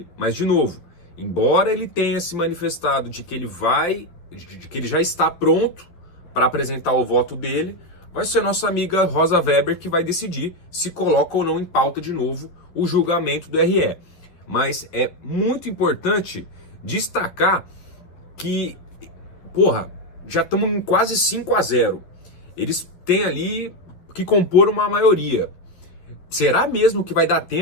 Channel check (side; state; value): right; late; 11 ms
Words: Mas, de novo, embora ele tenha se manifestado de que ele já está pronto para apresentar o voto dele, vai ser nossa amiga Rosa Weber que vai decidir se coloca ou não em pauta de novo o julgamento do RE. Mas é muito importante destacar que, já estamos em quase 5-0. Eles têm ali que compor uma maioria. Será mesmo que vai dar